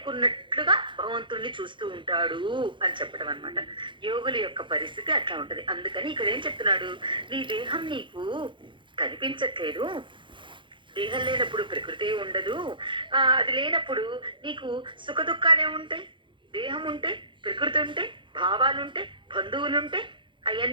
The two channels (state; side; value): late; left; 0.23 ms